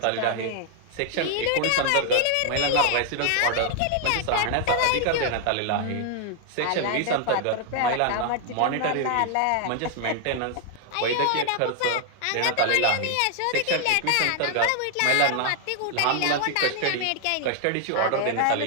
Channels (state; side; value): different; both; correlation 0.00